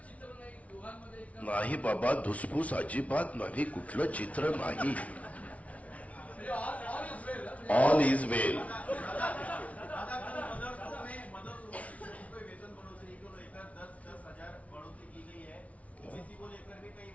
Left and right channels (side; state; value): right; late; 0.066 ms